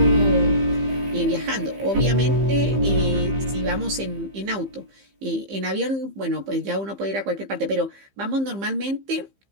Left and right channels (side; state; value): left; late; 15 ms